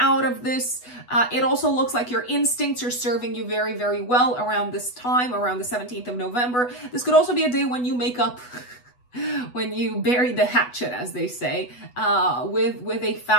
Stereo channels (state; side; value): late; right; 8.1 ms